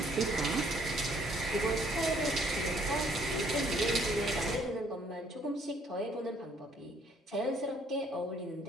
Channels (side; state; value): both; normal; correlation 0.63